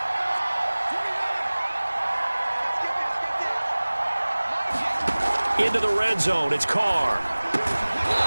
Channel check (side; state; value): both; inverted; correlation -1.00